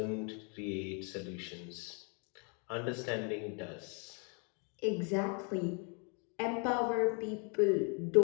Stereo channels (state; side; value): quieter; right; 36.8 dB